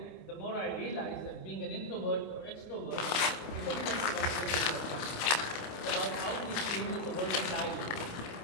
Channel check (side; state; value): right; late; 28 ms